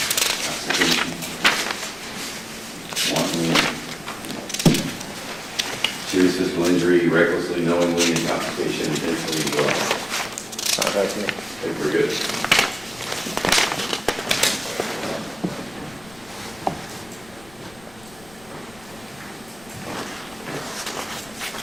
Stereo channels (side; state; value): left; noise; rumble, 23 dB below the sound